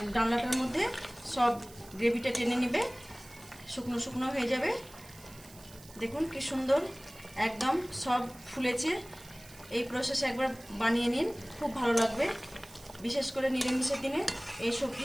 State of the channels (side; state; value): right; noise; hiss, 20 dB below the sound